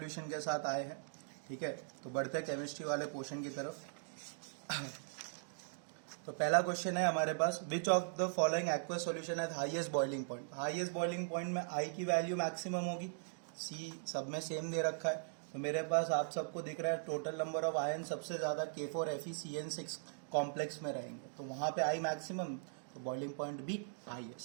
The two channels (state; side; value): silent; left; digital silence